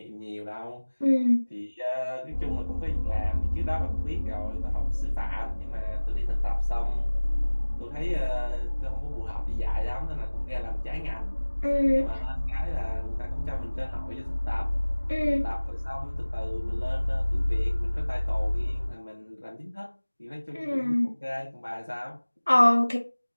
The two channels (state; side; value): inverted; both; correlation -1.00